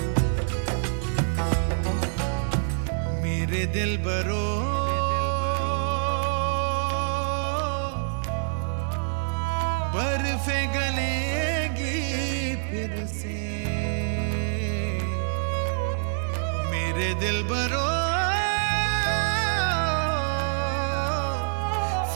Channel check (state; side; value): silent; left; 61 dB below the other